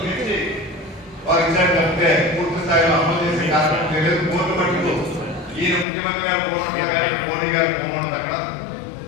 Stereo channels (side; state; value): right; drops out; at 5.9 s